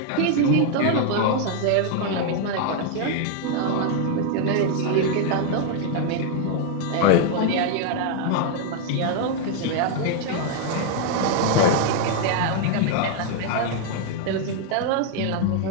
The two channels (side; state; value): both; different; correlation 0.00